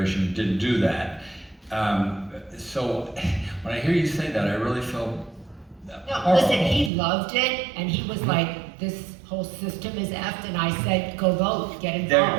didn't do that. So when I hear you say that, I really feel No, listen, he loved it, and he was like, this whole system is effed, and I said, go vote, get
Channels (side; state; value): left; drops out; at 6.9 s